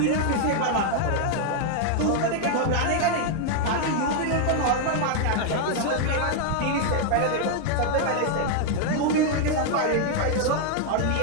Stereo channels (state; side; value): different; both; correlation 0.00